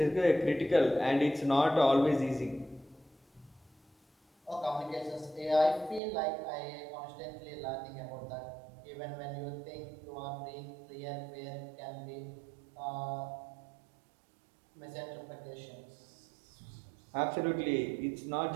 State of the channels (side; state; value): left; drops out; at 6.0 s